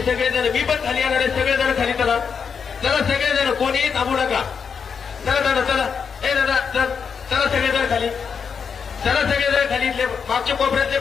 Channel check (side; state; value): right; quieter; 6.3 dB